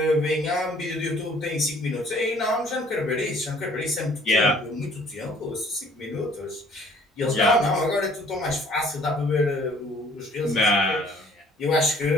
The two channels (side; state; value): both; normal; correlation 0.56